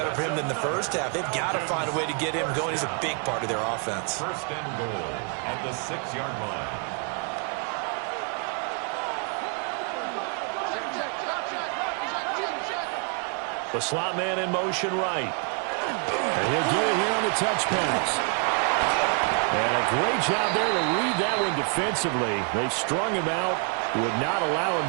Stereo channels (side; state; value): left; quieter; 38.3 dB